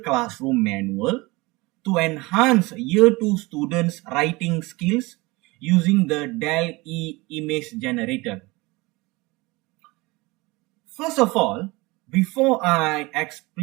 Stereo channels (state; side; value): quieter; left; 23.3 dB